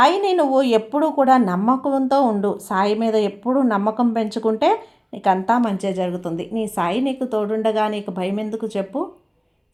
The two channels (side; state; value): both; identical; correlation 1.00